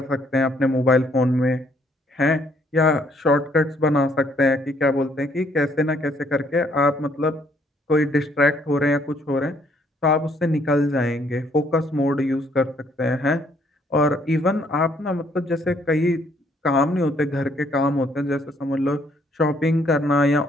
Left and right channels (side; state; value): both; normal; correlation 0.67